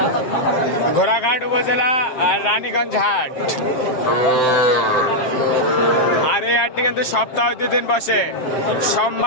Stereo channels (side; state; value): right; late; 7.6 ms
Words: ঘোড়াঘাট উপজেলা আর রানীগঞ্জ হাট। আর এই হাটটি কিন্তু সপ্তাহে 2 দিন বসে,